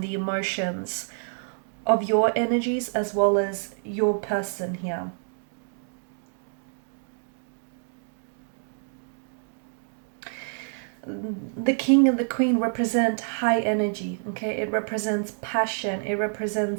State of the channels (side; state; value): left; silent; digital silence